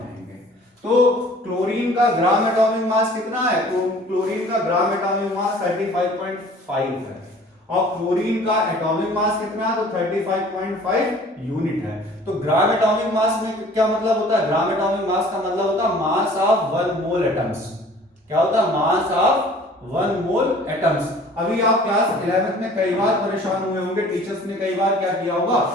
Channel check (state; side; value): normal; both; correlation 0.50